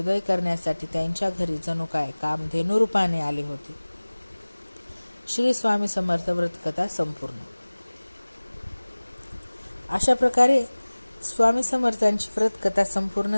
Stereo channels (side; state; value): both; inverted; correlation -1.00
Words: करण्यासाठी त्यांच्या घरी जणू काय कामधेनू रूपाने आले होते. श्री स्वामी समर्थ व्रतकथा संपूर्ण. अशा प्रकारे स्वामी समर्थांची व्रतकथा